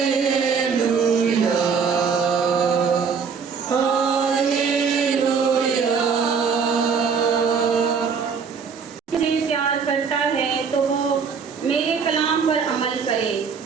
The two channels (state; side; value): quieter; left; 6.0 dB